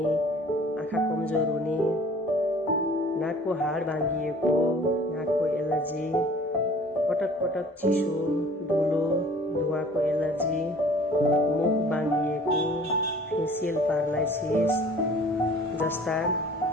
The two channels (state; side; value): normal; both; correlation 0.49